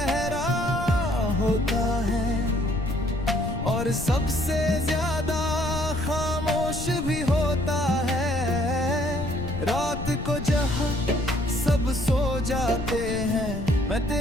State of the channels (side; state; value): left; noise; rumble, 7 dB below the sound